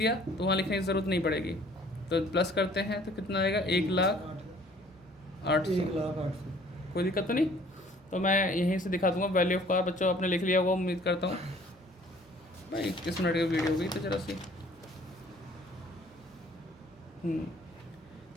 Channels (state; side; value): normal; both; correlation 0.55